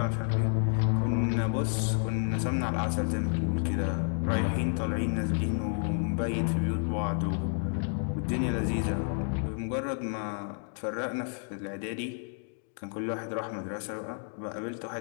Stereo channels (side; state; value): right; silent; 58 dB below the other